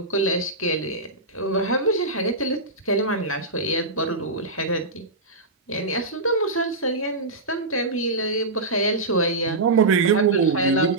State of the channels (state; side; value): quieter; left; 3.0 dB